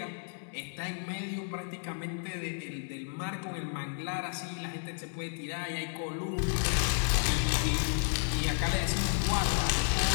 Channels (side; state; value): right; silent; digital silence